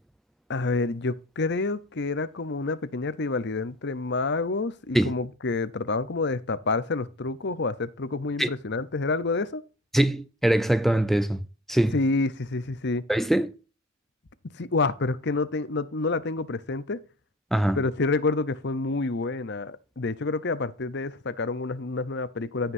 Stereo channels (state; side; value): normal; both; correlation 0.43